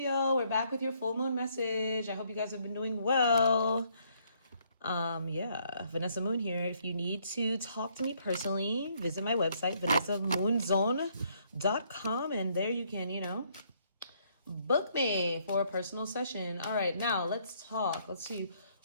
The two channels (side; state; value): both; inverted; correlation -0.68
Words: We're back with your full moon message. I hope you guys have been doing well. Vanessa Moon here. If you need to talk to me personally, visit my website, vanessamoongirl.com, and there you can, book me for a personal session. All right, now let's talk. Let's see